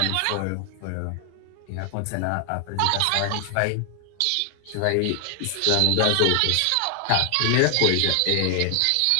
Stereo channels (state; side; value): different; both; correlation 0.00